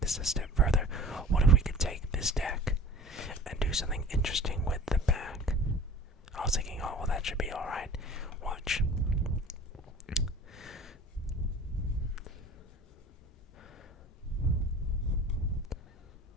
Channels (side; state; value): both; normal; correlation 0.43